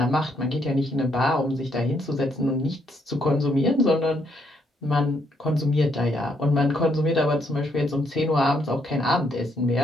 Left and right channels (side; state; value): both; normal; correlation 0.73